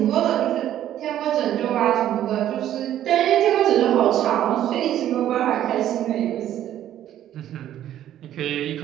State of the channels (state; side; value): quieter; left; 11.8 dB